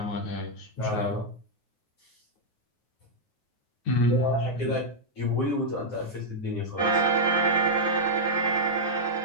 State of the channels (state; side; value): late; right; 9.4 ms